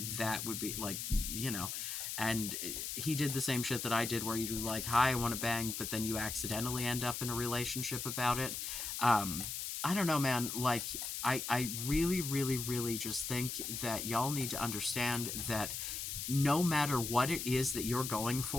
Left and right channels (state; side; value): noise; left; hiss, 4 dB below the sound